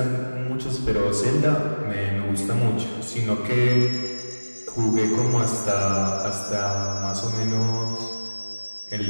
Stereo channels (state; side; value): inverted; both; correlation -1.00